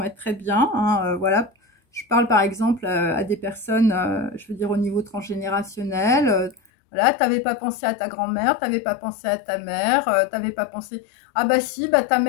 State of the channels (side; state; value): right; drops out; at 6.7 s